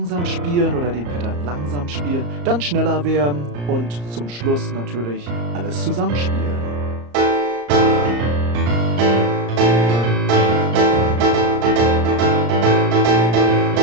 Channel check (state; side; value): late; left; 34 ms